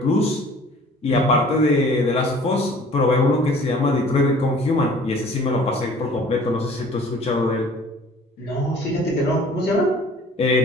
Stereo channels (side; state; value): both; normal; correlation 0.50